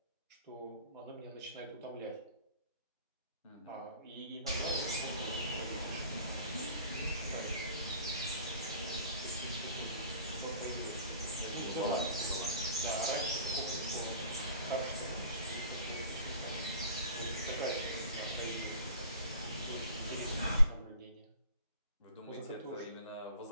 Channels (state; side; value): inverted; both; correlation -0.45